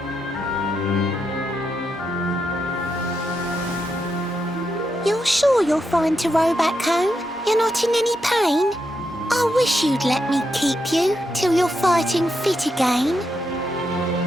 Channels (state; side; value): normal; both; correlation 0.83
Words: You're sure you're fine to row back home? You're not in any pain? I wish you'd let me keep you till you're fighting fit again.